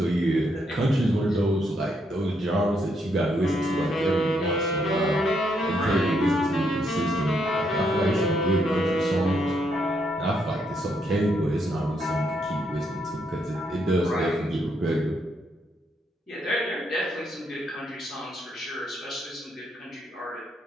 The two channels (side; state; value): both; normal; correlation 0.76